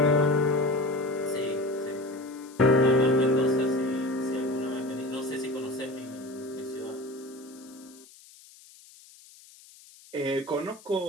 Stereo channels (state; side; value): noise; left; hiss, 23 dB below the sound